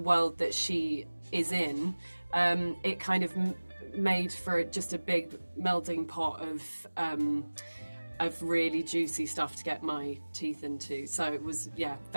that she is in, it kind of made for just a big melting pot of really juicy stuff to get my teeth into. So it was,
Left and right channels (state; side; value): inverted; both; correlation -1.00